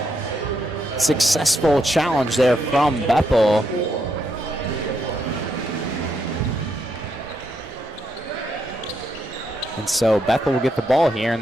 successful challenge there from Bethel. And so Bethel will get the ball here,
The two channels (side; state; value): both; normal; correlation 0.79